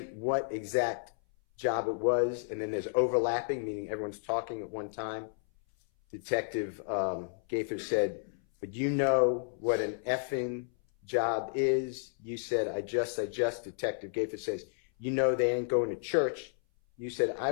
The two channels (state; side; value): silent; right; 56 dB below the other